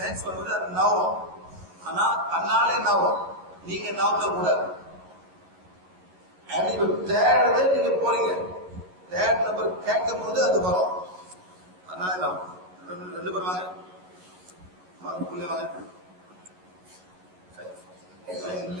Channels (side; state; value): left; late; 11 ms